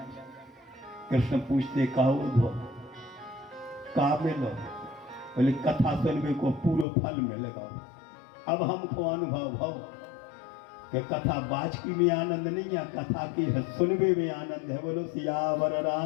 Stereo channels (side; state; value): right; drops out; at 6.9 s